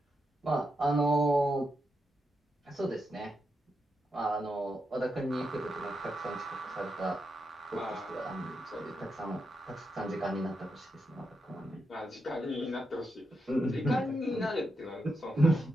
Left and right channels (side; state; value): both; normal; correlation 0.85